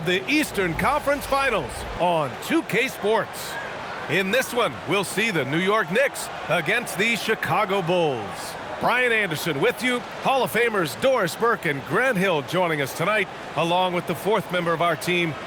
the Eastern Conference Finals on 2K Sports. In this one, we'll see the New York Knicks against the Chicago Bulls. Brian Anderson with you, Hall of Famers Doris Burke and Grant Hill joining us tonight, along with the 4th member of our team,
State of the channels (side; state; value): both; identical; correlation 1.00